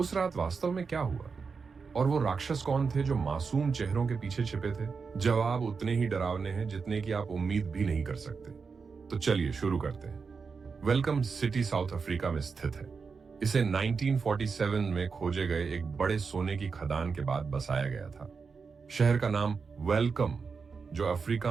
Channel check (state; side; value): quieter; left; 5.2 dB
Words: रात वास्तव में क्या हुआ और वो राक्षस कौन थे जो मासूम चेहरों के पीछे छिपे थे? जवाब उतने ही डरावने हैं जितने कि आप उम्मीद भी नहीं कर सकते। तो चलिए शुरू करते हैं। वेलकम सिटी साउथ अफ्रीका में स्थित है। इसे 1947 में खोजे गए एक बड़े सोने की खदान के बाद बसाया गया था। शहर का नाम वेलकम, जो